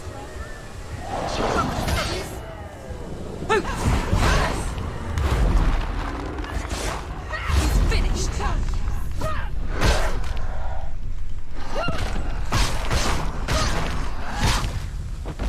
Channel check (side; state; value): both; identical; correlation 1.00